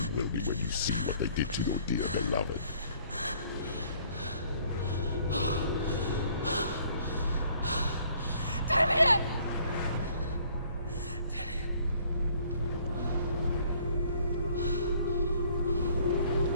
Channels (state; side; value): inverted; both; correlation -0.60